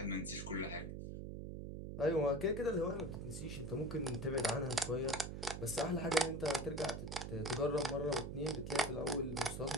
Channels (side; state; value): right; noise; hum, 6 dB below the sound